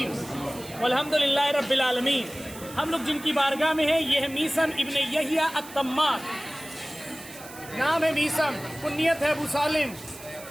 والحمدللہ رب العالمین. ہم لوگ جن کی بارگاہ میں ہیں یہ ہے میثم ابن یحییٰ التمار. نام ہے میثم، کنیت ہے ابو سالم.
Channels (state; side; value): noise; right; hiss, 17 dB below the sound